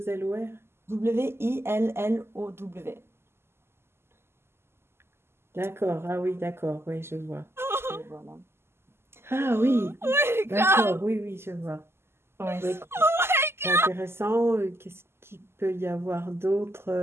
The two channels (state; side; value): late; left; 0.12 ms